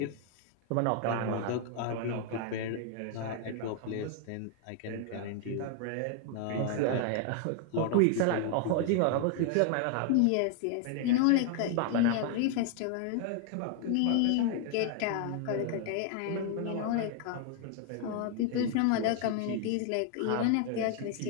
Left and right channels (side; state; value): both; different; correlation 0.00